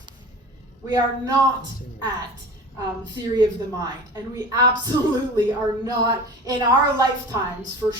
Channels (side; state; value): both; normal; correlation 0.37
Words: We are not at theory of the mind. And we absolutely are not, in our lifetimes, for